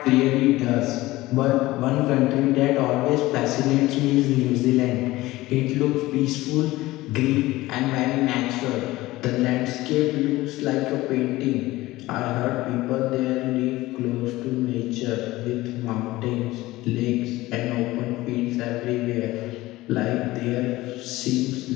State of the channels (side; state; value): right; quieter; 18.3 dB